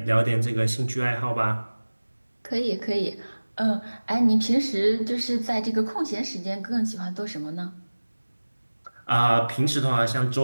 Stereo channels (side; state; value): both; inverted; correlation -1.00